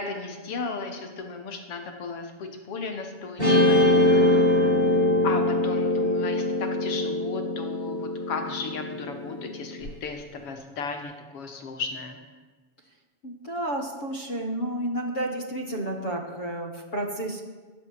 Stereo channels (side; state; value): right; late; 7.1 ms